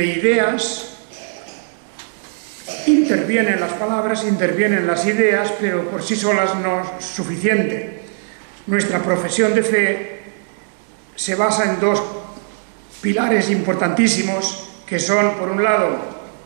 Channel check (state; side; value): silent; left; digital silence